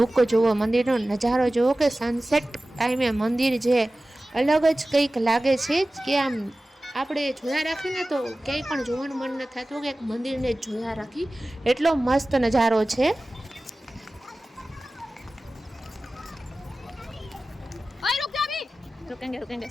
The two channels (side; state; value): both; normal; correlation 0.96